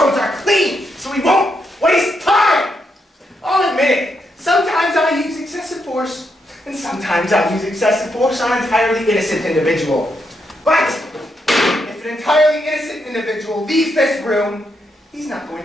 are clean, so we won't waste time. I'll admit it. Sometimes I use excessive force, and sometimes I use excessive force on an entirely innocent individual. But if an entirely innocent individual leaves this room, he's not going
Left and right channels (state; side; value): normal; both; correlation 0.80